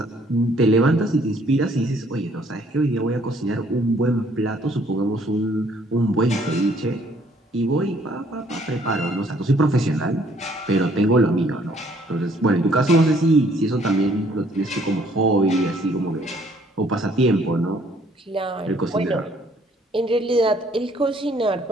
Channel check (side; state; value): both; normal; correlation 0.62